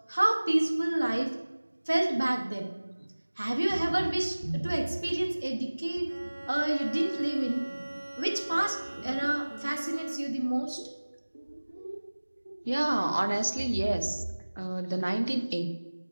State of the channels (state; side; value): inverted; both; correlation -1.00